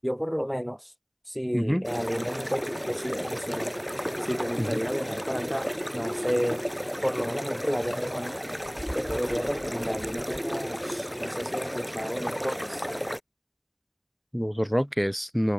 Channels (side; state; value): both; identical; correlation 1.00